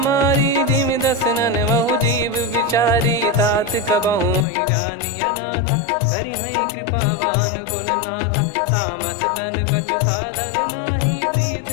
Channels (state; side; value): drops out; right; at 4.5 s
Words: जिमि दसनन बहु जीव विचारी तात कबहु ही जानी अनाथा करि हई कृपावान कुल नाथा तामस तन कछु साधन नाही